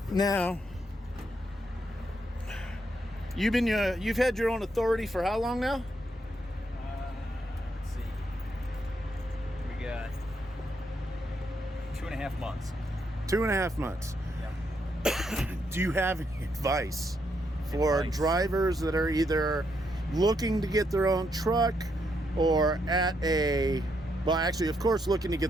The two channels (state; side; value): normal; both; correlation 0.77